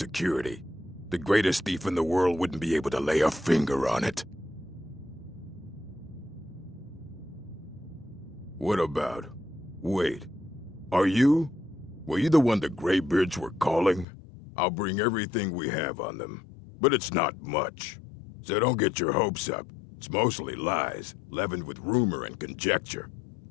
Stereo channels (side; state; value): right; drops out; at 14.1 s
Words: The greatest thief in the world wouldn't be able to lay a finger on it. What about? Wait. Were you the one the Greybeards were calling? I'll bring everything we have on them. But it's not much. So don't get your hopes up. It's mostly lies, leavened with rumor and conjecture.